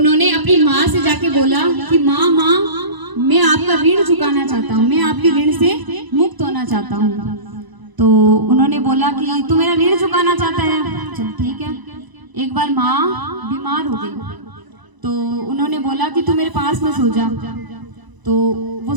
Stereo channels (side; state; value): left; late; 1.0 ms